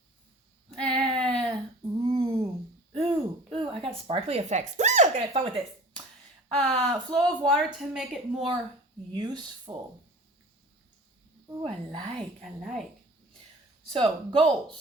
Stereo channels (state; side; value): normal; both; correlation 0.43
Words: Ooh, I got sparkly effects. Ooh, I'm gonna have fun with this. Flow of water to make it more useful. Ooh, I like. So,